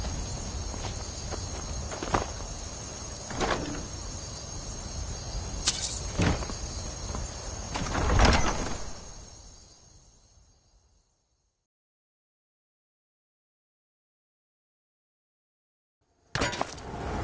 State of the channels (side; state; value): both; identical; correlation 1.00